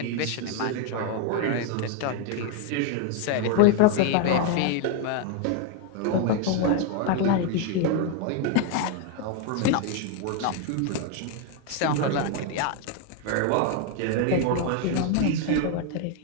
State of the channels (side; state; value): both; different; correlation 0.01